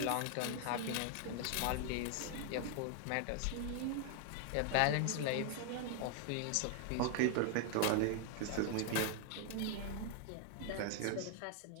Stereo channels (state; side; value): different; both; correlation 0.00